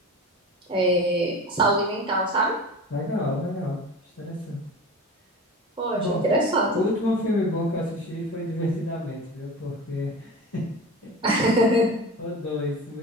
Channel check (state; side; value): normal; both; correlation 0.32